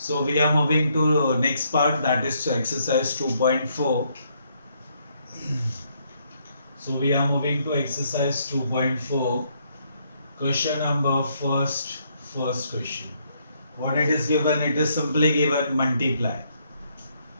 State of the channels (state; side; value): inverted; both; correlation -0.72